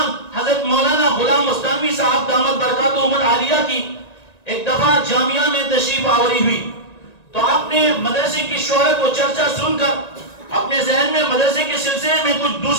حضرت مولانا غلام مستانوی صاحب دامت برکاتہم العالیہ کی ایک دفعہ جامعہ میں تشریف آوری ہوئی، تو آپ نے مدرسے کی شہرت و چرچا سن کر اپنے ذہن میں مدرسے کے سلسلے میں کچھ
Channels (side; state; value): right; late; 1.9 ms